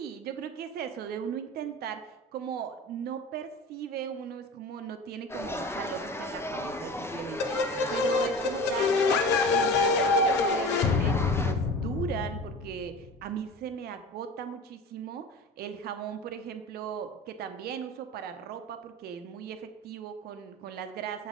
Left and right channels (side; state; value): both; normal; correlation 0.34